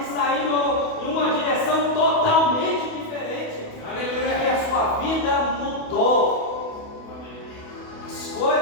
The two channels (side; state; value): right; late; 28 ms